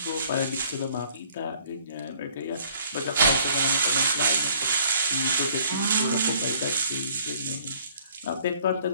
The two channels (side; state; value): both; inverted; correlation -0.57